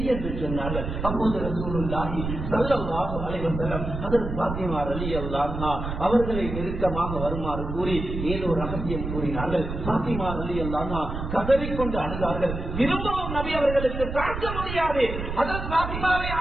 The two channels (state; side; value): noise; right; rumble, 6 dB below the sound